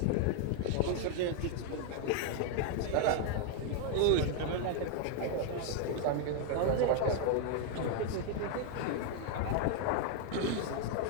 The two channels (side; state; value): both; different; correlation 0.00